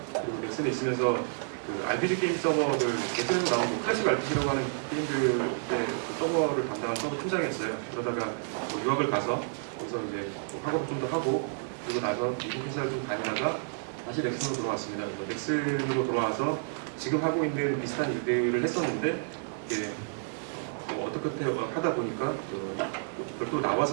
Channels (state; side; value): silent; left; digital silence